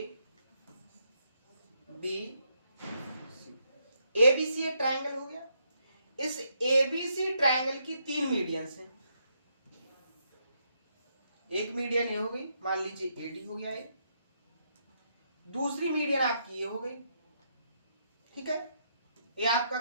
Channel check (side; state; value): both; inverted; correlation -0.77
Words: ABC एक ट्रायंगल हो गया। इस ABC ट्रायंगल की 3 मीडियंस हैं, एक मीडियन ये हो गई, मान लीजिए AD हो गया, ये दूसरी मीडियन आपकी ये हो गई, ठीक है, ये आपका